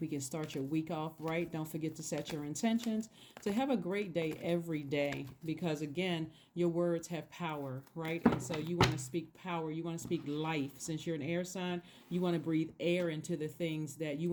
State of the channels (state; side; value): identical; both; correlation 1.00